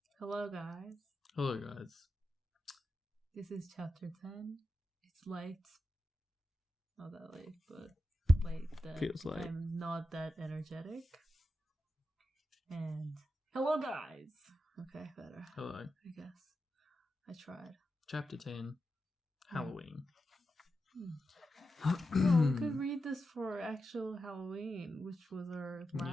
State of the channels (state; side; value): normal; both; correlation 0.89